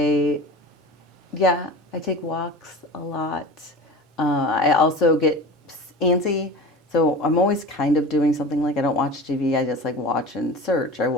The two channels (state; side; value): normal; both; correlation 0.34